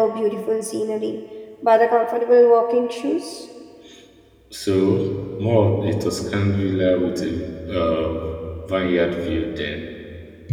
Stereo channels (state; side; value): identical; both; correlation 1.00